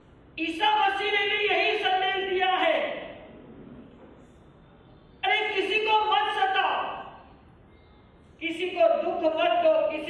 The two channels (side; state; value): both; identical; correlation 1.00